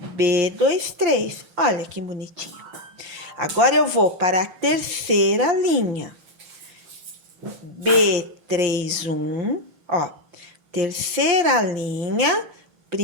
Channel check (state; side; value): late; left; 5.8 ms